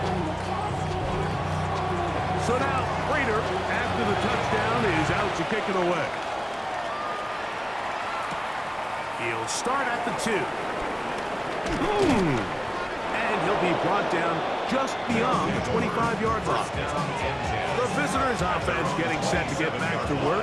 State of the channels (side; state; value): both; identical; correlation 1.00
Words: So now, Prater, after the touchdown, is out to kick it away. He'll start at the 2. And he'll be brought down just beyond the 25-yard line. The visitors' offense getting set to get back to